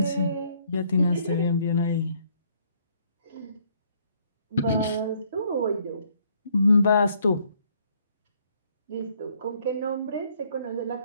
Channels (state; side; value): inverted; both; correlation -0.66